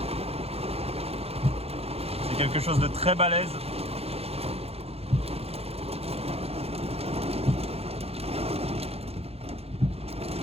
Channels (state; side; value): late; left; 0.29 ms